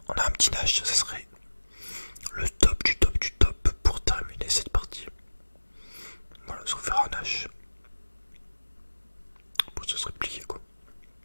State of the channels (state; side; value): inverted; both; correlation -1.00